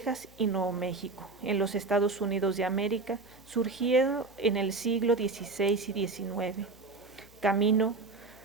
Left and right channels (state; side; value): quieter; left; 3.7 dB